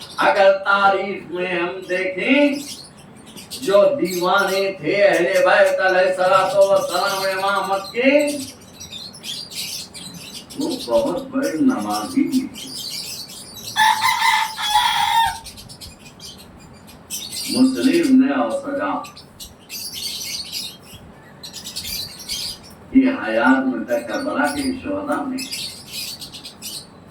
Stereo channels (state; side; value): identical; both; correlation 1.00